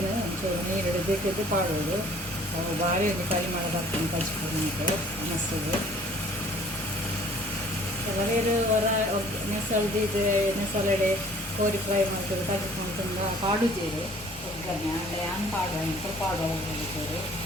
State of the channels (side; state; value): both; normal; correlation 0.54